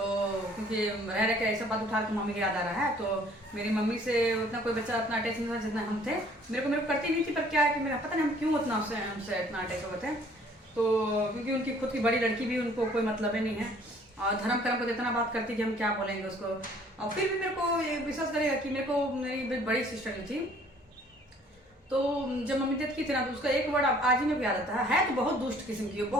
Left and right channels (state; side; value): normal; both; correlation 0.57